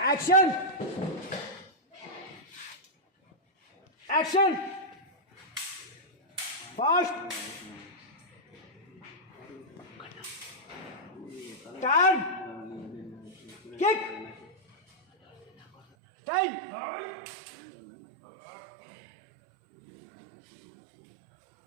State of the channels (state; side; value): drops out; left; at 15.8 s